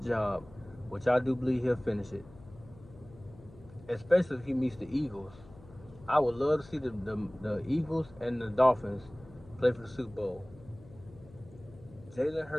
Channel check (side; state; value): left; noise; hum, 21 dB below the sound